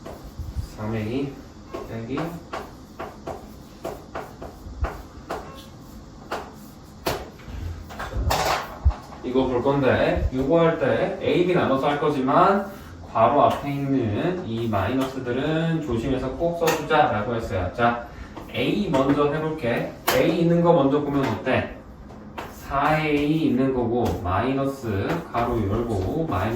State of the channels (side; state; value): both; identical; correlation 1.00